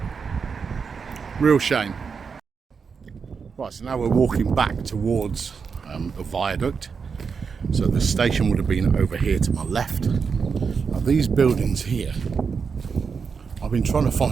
Real shame. Right, so now we're walking back towards the viaduct. So the station would have been over here to my left. Now these buildings here, I've been trying to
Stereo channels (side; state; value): left; quieter; 5.7 dB